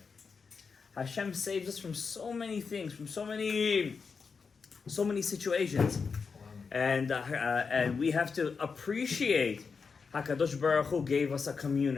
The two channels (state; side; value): quieter; right; 5.3 dB